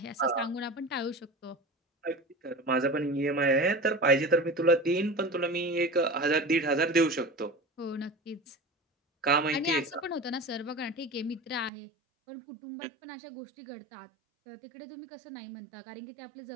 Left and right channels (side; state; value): left; drops out; at 11.7 s